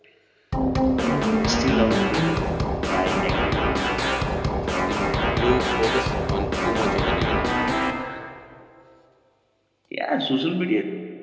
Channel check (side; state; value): both; identical; correlation 1.00